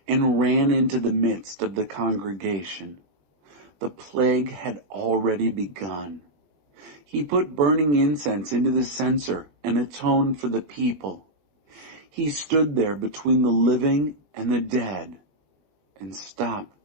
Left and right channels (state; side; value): late; left; 21 ms